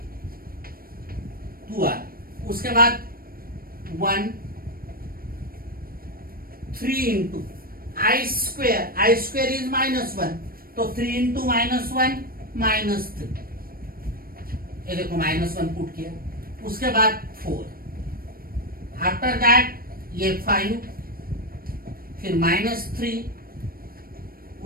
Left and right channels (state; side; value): late; left; 0.43 ms